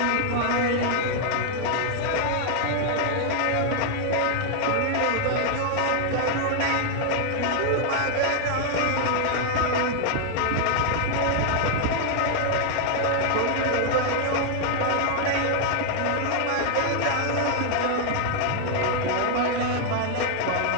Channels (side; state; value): both; different; correlation 0.00